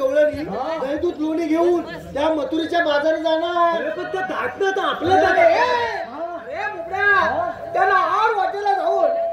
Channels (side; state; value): both; identical; correlation 1.00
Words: गवळणी दही दूध लोणी घेऊन त्या मथुरेच्या बाजारी जाणार. अरे पण ते धाटणं तर आपलं अरे बोबड्या, त्याला आड वाटेला जाऊन